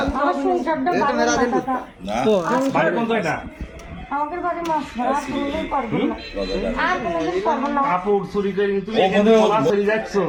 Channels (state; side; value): identical; both; correlation 1.00